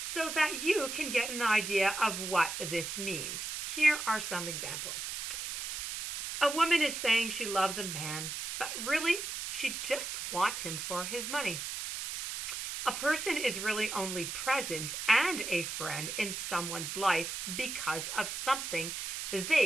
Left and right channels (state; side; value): noise; right; hiss, 5 dB below the sound